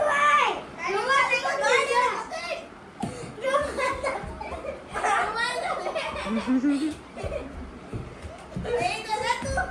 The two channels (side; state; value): both; identical; correlation 1.00